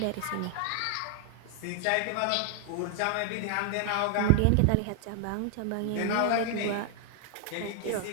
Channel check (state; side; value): different; both; correlation 0.00